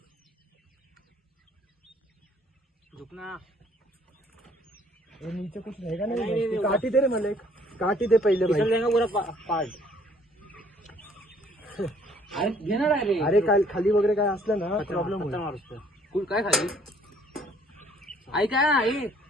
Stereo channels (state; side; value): normal; both; correlation 0.60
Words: नीचे कुछ रहेगा नहीं. काटी दे रे मला एक. काटी दे पहिले भाई. घेणार आहे रे. अरे काय खाली वगैरे काय असलं ना प्रॉब्लेम कुल काय खाली ऐका ना.